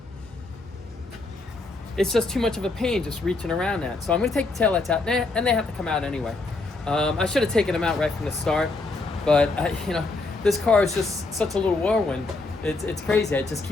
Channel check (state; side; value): quieter; right; 3.4 dB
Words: It's just too much of a pain just reaching around that. So I'm going to take the taillights out, and they have to come out anyway. I should have taken them out right from the start, but this car is just such a little whirlwind. It's crazy. I just